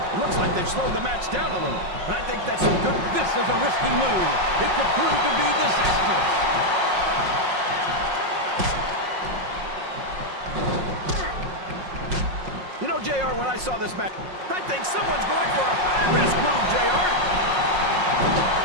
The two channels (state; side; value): late; left; 5.5 ms